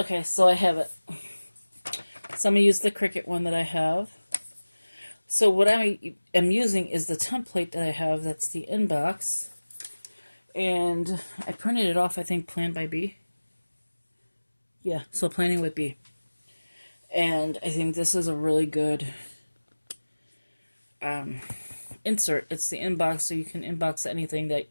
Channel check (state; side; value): inverted; both; correlation -1.00